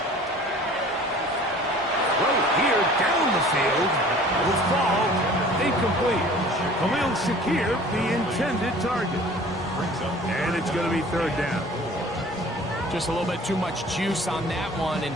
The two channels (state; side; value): normal; both; correlation 0.47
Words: Throw here down the field. Will fall. Incomplete. Khalil Shakir, the intended target. And it's going to be 3rd down. Just a little bit too much juice on that one,